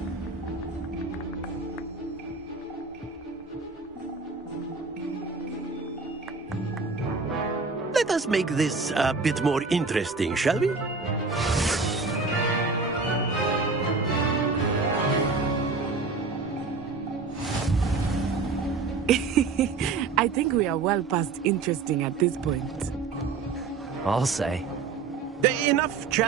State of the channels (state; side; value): quieter; left; 4.4 dB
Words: Let us make this a bit more interesting, shall we? I think we are well past interesting at this point. I'll say. Enough